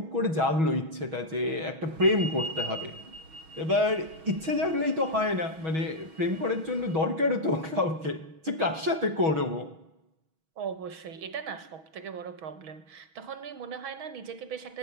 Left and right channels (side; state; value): left; late; 6.2 ms